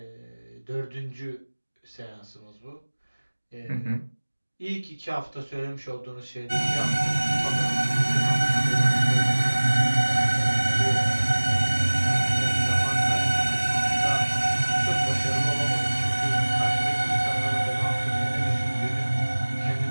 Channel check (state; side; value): inverted; both; correlation -1.00